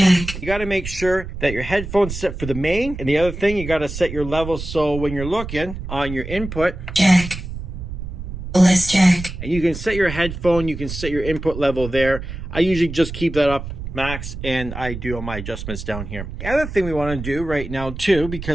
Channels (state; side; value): noise; right; rumble, 8 dB below the sound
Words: You got to make sure that your headphones set for the main, and the other thing, you got to set your level so when you're looking on your input, Jack, bliss jack. and you can set your headphone, you can set your input level there. I usually just keep that up max, and I do all my adjustments down here. The other thing we want to do right now too,